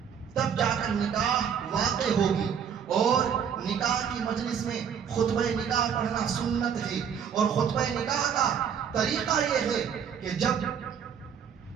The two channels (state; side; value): quieter; left; 7.6 dB